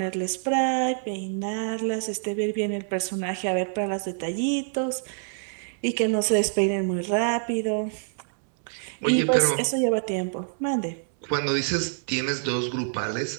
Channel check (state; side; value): silent; left; 61 dB below the other